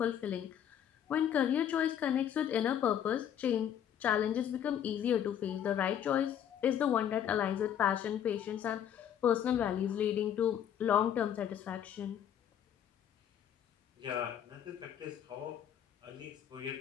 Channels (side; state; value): right; quieter; 9.6 dB